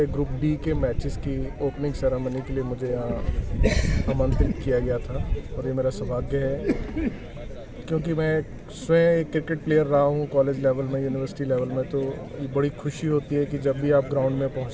ग्रुप डी के मैचेस की ओपनिंग सेरेमनी के लिए मुझे यहाँ आमंत्रित किया गया था और ये मेरा सौभाग्य है, क्योंकि मैं स्वयं एक क्रिकेट प्लेयर रहा हूँ कॉलेज लेवल में, यूनिवर्सिटी लेवल में। तो ये बड़ी खुशी होती है कि जब भी आप ग्राउंड में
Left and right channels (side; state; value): both; identical; correlation 1.00